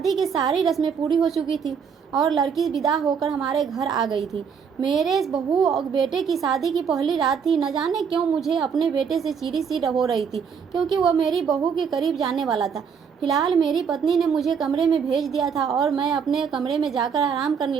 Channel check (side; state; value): left; quieter; 6.6 dB